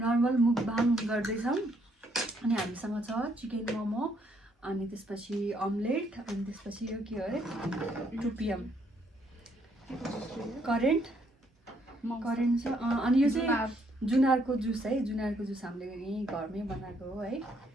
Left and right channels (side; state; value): both; normal; correlation 0.70